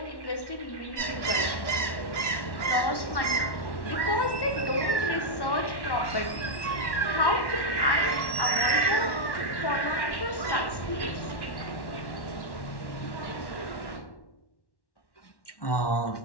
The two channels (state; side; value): late; right; 1.1 ms